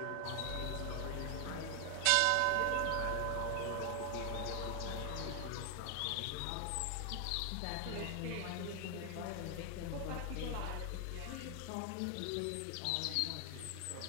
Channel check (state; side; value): different; both; correlation 0.00